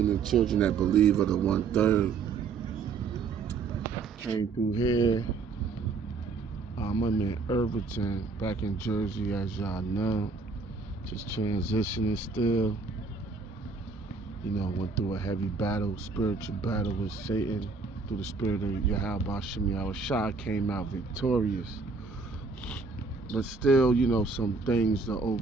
and children that believe are the 1/3. Came through here. I'm in Irvington, back in Jersey, as y'all know. Just transitioning still. Went through a heavy battle, spiritual battle with Satan. Through the spirit of Yahweh Bashim Yahushua, came out victorious. But still, some things to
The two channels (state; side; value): quieter; left; 4.5 dB